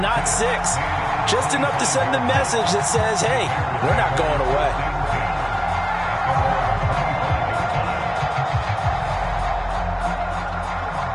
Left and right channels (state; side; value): identical; both; correlation 1.00